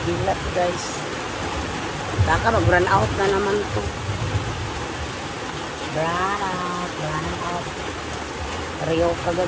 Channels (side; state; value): both; identical; correlation 1.00